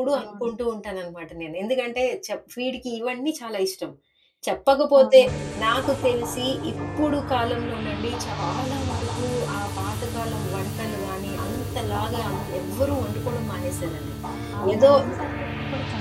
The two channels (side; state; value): both; identical; correlation 1.00